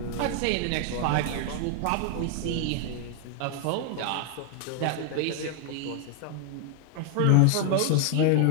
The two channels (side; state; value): both; different; correlation 0.00